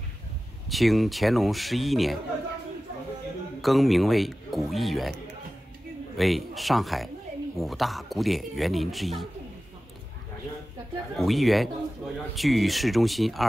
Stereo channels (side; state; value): both; normal; correlation 0.95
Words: 清乾隆11年更名为古义园，为上海5大古典园林之一。古义园距市中心